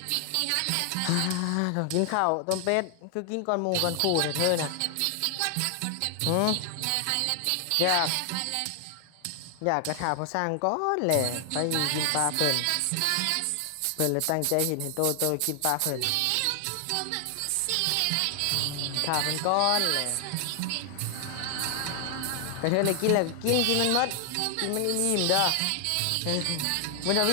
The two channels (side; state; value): both; different; correlation 0.00